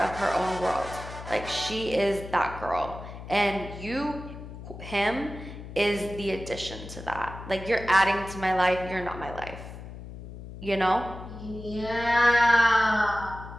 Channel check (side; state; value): left; noise; hum, 12 dB below the sound